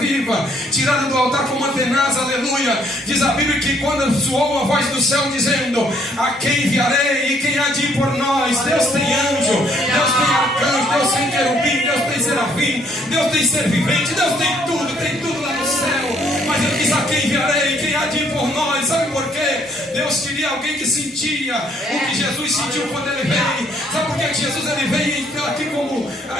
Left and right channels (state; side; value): normal; both; correlation 0.66